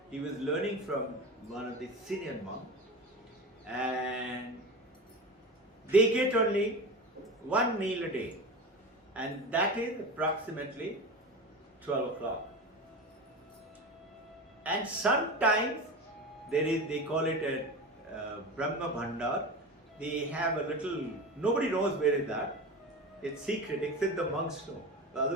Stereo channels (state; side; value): normal; both; correlation 0.27